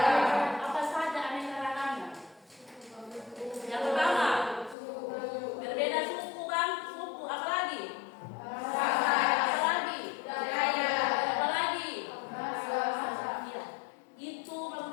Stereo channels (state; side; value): drops out; right; at 4.8 s